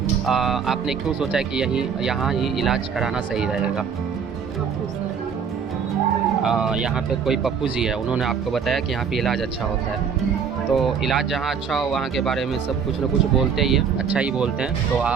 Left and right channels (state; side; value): quieter; left; 6.6 dB